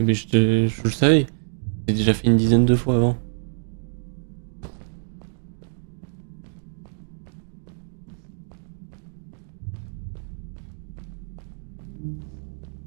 je le savais. J'ai déjà fait une dizaine de fois avant.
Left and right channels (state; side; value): silent; left; digital silence